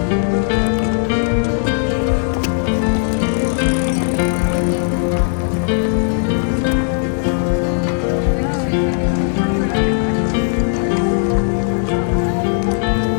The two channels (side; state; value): right; silent; 68 dB below the other